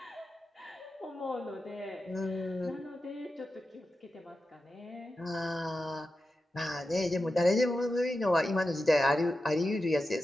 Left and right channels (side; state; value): both; normal; correlation 0.91